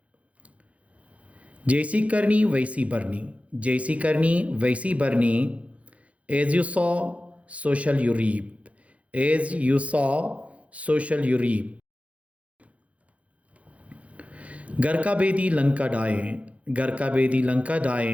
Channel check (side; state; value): left; late; 0.065 ms